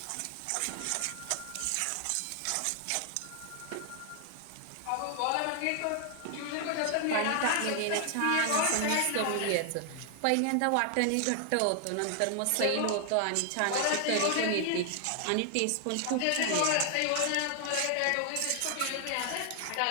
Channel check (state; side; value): different; both; correlation 0.00